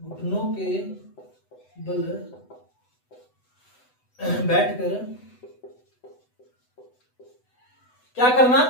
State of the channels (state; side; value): late; right; 8.0 ms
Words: के बल बैठकर क्या करना,